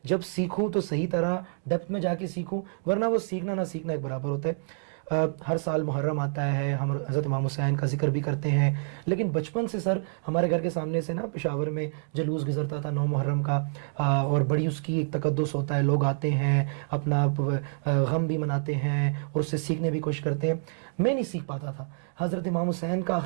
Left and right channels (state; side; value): silent; left; digital silence